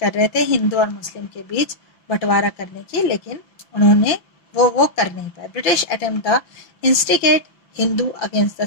रहे थे हिंदू और मुस्लिम के बीच बंटवारा करने की, लेकिन उन्होंने वो कर नहीं पाए. British attempt the instigate Hindu against the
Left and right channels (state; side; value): late; right; 6.0 ms